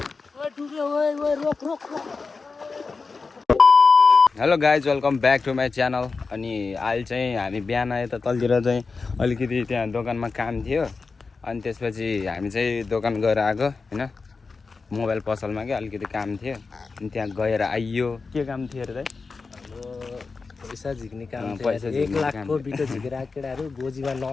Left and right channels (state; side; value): quieter; right; 4.4 dB